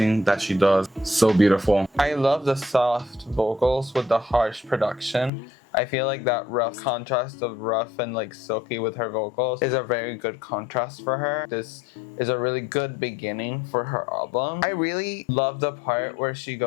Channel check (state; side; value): drops out; right; at 5.3 s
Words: that she does. So beautiful. I love the soft vocals with the harsh production. I feel like that rough contrast of rough and like silky with her vocals is a very good contrast for her. This is a really good beginning for her album. I really love the part where she